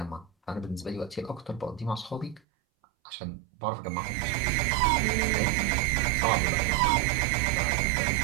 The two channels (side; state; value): left; drops out; at 2.4 s